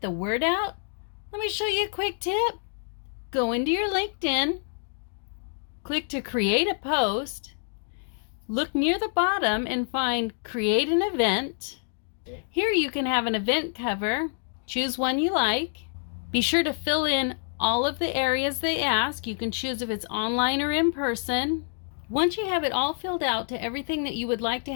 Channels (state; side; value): silent; right; 60 dB below the other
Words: word out? Let me show you a quick tip. Go into your LinkedIn, click to create a post, look near the bottom and find create an event. Here you can have an event cover. Choose one you like. Be sure to fill in all of the areas they ask. You can choose if it's online or in person. Once you have it all filled out to everything that you would like to